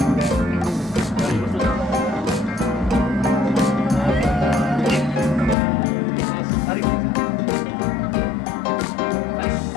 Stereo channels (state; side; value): drops out; right; at 5.6 s